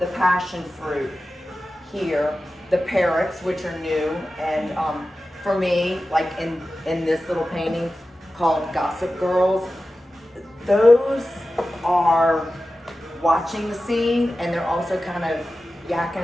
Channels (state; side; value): normal; both; correlation 0.94